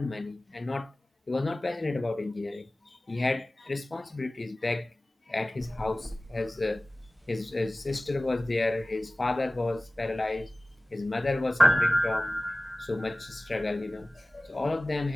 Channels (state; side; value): normal; both; correlation 0.97